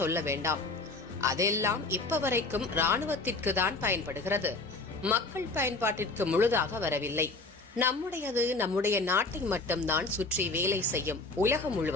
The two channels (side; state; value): right; quieter; 3.4 dB